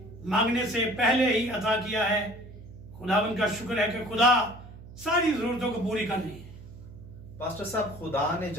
मांगने से पहले ही अता किया है। खुदावन का शुक्र है कि खुदा सारी जरूरतों को पूरी कर रही है। पास्टर साहब, खुदा ने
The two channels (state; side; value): noise; right; hum, 16 dB below the sound